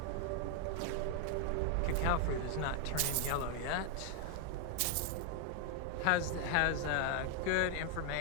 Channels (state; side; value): different; both; correlation 0.00